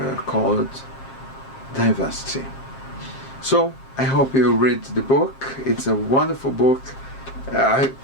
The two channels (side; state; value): right; late; 7.5 ms